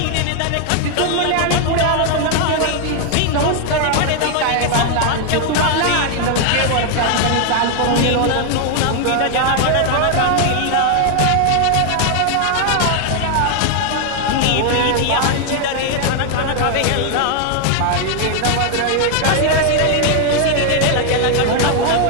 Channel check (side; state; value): both; different; correlation 0.00